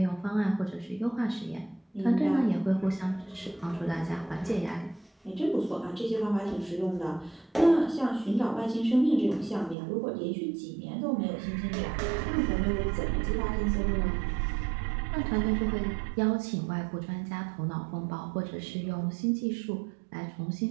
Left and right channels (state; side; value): drops out; left; at 9.8 s